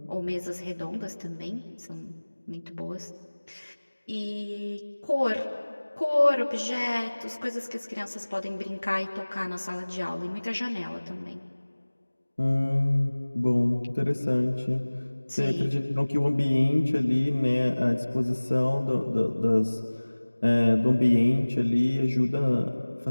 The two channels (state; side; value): inverted; both; correlation -1.00